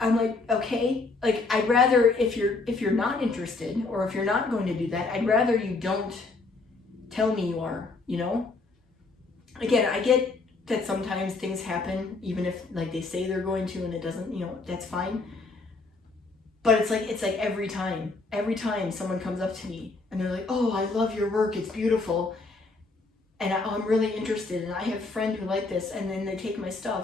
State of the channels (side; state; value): right; quieter; 3.7 dB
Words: like, okay, like, I'd rather, if you're not interested, or if you're not going to do that, I'd rather you don't tell me you are, you know? Again, I get that sometimes things happen, even if like they say they're going to and it doesn't, you know, that's fine. But it's like every time someone comes up to me and they're like, oh, I love your work, it's beautiful. And I'm really interested, and I have a friend who like this, and then they take my